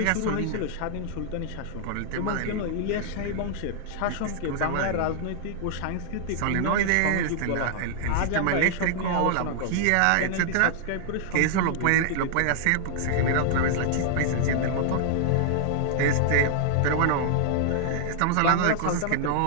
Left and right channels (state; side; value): different; both; correlation -0.01